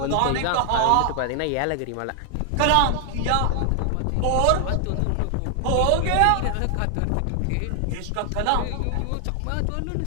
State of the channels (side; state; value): both; different; correlation 0.00